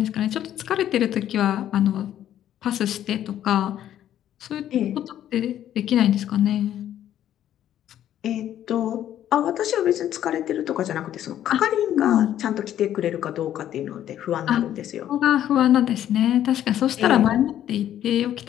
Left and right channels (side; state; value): right; quieter; 11.3 dB